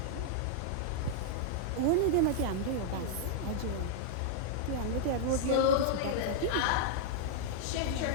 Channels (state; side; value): different; both; correlation -0.01